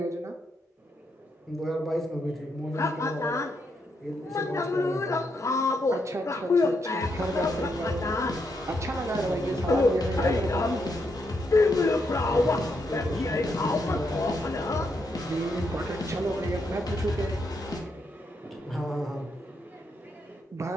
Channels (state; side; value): normal; both; correlation 0.80